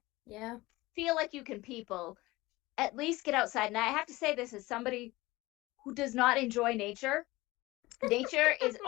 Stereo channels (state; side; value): quieter; right; 20.2 dB